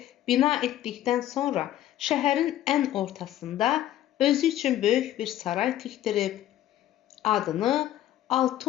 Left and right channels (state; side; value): quieter; right; 12.7 dB